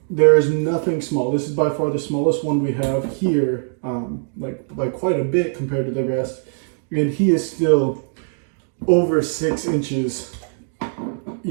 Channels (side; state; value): left; silent; 65 dB below the other